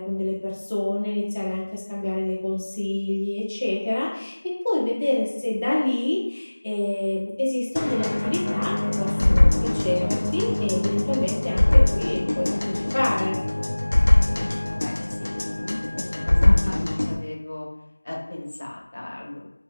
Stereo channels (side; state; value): both; inverted; correlation -1.00